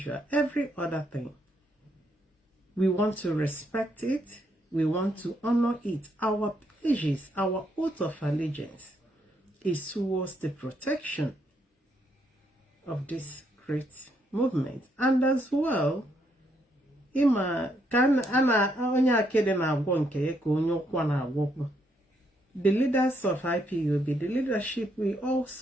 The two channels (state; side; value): normal; both; correlation 0.75